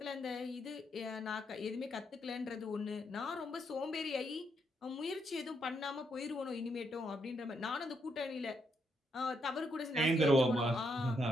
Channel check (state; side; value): normal; both; correlation 0.77